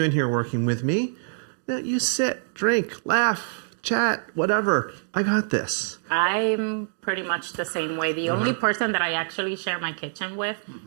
in here working with me. You sit, drink, laugh, chat, whatever. I got this. I'm pretty much the same way. The only person that I actually share my kitchen with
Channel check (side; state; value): left; silent; digital silence